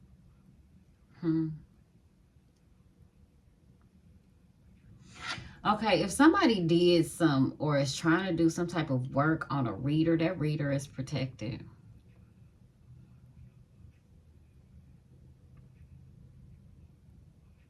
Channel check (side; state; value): both; identical; correlation 1.00